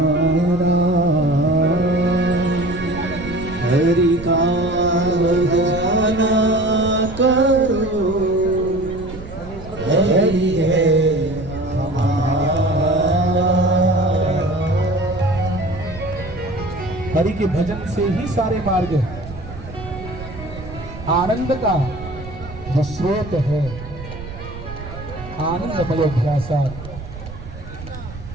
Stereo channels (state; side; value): noise; right; rumble, 13 dB below the sound